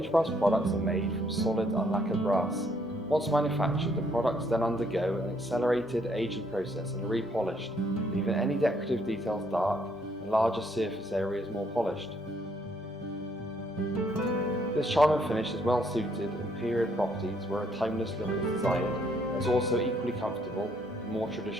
Aged brass products are made from solid unlacquered brass. Once manufactured, the products then undergo an accelerated aging process and are repolished, leaving any decorative details dark and larger surface areas more polished. This charming finish is well suited in period properties where a timeless look is desired and is also equally comfortable in more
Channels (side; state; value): both; normal; correlation 0.69